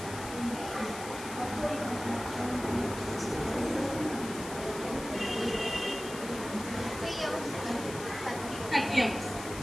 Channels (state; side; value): noise; left; hiss, 11 dB below the sound